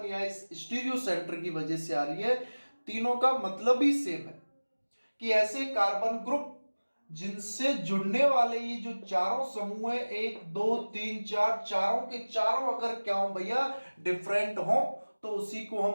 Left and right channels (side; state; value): both; inverted; correlation -1.00